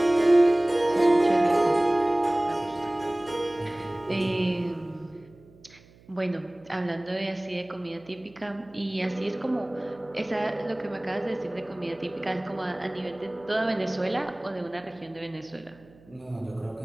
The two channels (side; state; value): right; noise; hum, 26 dB below the sound